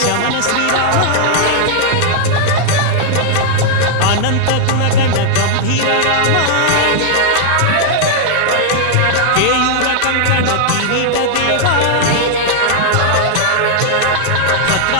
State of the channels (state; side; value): different; both; correlation 0.00